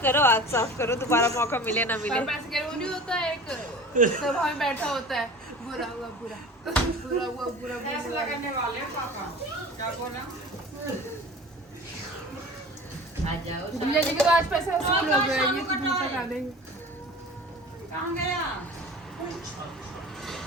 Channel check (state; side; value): normal; both; correlation 0.39